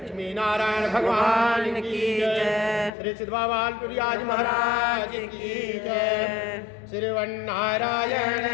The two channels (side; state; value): right; drops out; at 2.9 s